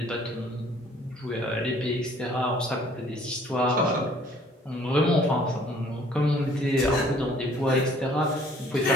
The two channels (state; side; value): normal; both; correlation 0.57